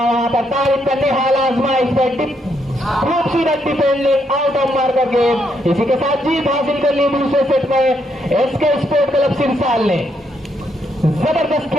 वहां पर, तारिफ करने हाल आजमाइश पर, खूबसूरत defending out of marker game. इसी के साथ जीत हासिल कर ली दूसरे सेट में एसके स्पोर्ट क्लब सिरसाल ने। जबरदस्त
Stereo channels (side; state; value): both; normal; correlation 0.76